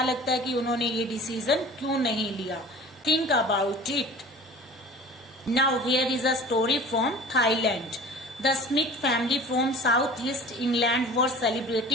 लगता है कि उन्होंने ये डिसीजन क्यों नहीं लिया? Think about it. Now here is a story from Thailand. The Smith family from southeast England were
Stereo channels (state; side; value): normal; both; correlation 0.41